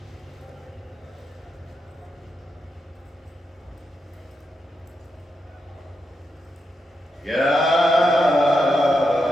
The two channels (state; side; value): normal; both; correlation 0.85